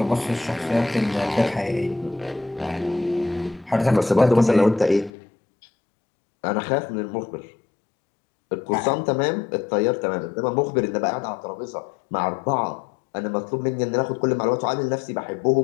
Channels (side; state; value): right; drops out; at 5.1 s